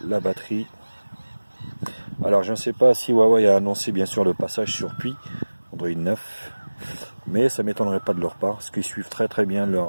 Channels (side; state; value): both; inverted; correlation -1.00